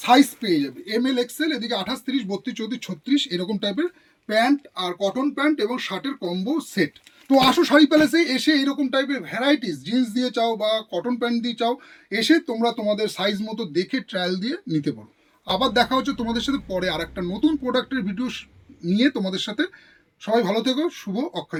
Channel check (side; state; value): both; identical; correlation 1.00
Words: সাইজ পেয়ে যাবে, এম এল এক্সেল, এদিকে 28, 30, 32, 34, 36 এরকম টাইপের প্যান্ট আর কটন প্যান্ট এবং শার্টের কম্বো সেট। তো আসো শাড়ি প্যালেসে এসে এরকম টাইপের ভ্যারাইটিস জিন্স দিয়ে চাও বা কটন প্যান্ট দিয়ে চাও, এসে তোমরা তোমাদের সাইজ মতো দেখে ট্রায়াল দিয়ে নিতে পারো। আবার দেখা হচ্ছে তোমাদের সাথে পরে আর একটা নতুন প্রোডাক্টের ভিডিও নিয়ে তোমাদের সাথে। সবাই ভালো থেকো, শুভ